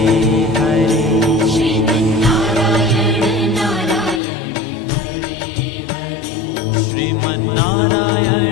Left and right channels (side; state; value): right; drops out; at 4.2 s